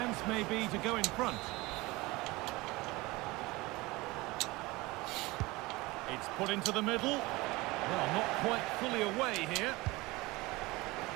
may be to go in front. It's put into the middle. Well, not quite fully away here.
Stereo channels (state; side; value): quieter; left; 21.9 dB